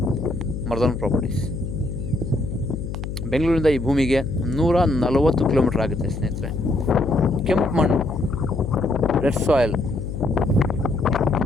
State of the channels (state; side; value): noise; left; hum, 6 dB below the sound